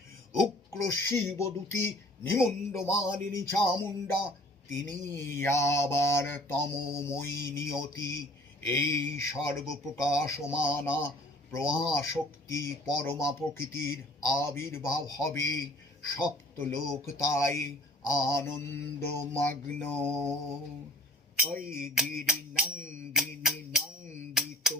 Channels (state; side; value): normal; both; correlation 0.50